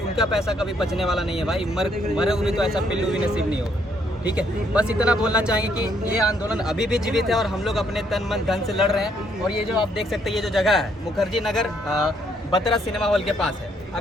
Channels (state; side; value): normal; both; correlation 0.70